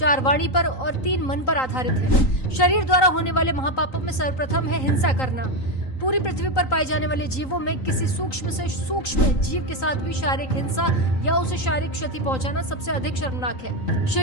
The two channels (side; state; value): right; late; 3.9 ms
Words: वाणी पर और 3 मन पर आधारित है। शरीर द्वारा होने वाले महापापों में सर्वप्रथम है हिंसा करना। पूरी पृथ्वी पर पाए जाने वाले जीवों में किसी सूक्ष्म से सूक्ष्म जीव के साथ भी शारीरिक हिंसा या उसे शारीरिक क्षति पहुंचाना सबसे अधिक शर्मनाक है।